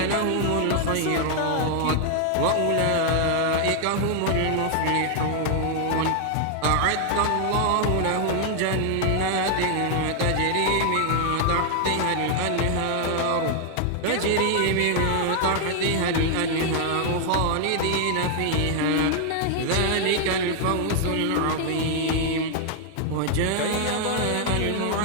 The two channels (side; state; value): both; different; correlation 0.00